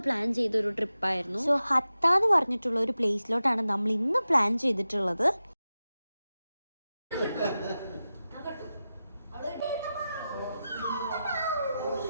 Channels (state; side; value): inverted; both; correlation -0.93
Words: പ്ലാൻ ചെയ്തൊരു ട്രിപ്പായിരുന്നു. സോ ഹത്ത എന്ന് പറഞ്ഞിട്ടുള്ള ഒരു പ്ലേസിലോട്ടാണ് നമ്മൾ ഇന്ന് പ്ലാൻ ചെയ്തിട്ടുള്ളത്.